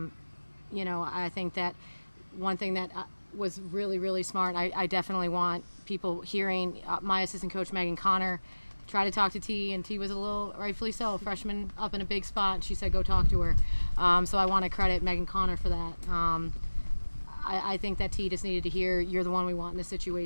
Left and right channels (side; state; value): both; inverted; correlation -1.00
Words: think that one thing that was really, really smart, I definitely want people hearing my assistant coach, Megan Connor, try to talk to T, and T was a little, rightfully so, freshman up in a big spot, and she said go talk to her. So I want to credit Megan Connor for that. I think that T just needed to hear, you're the one we want in this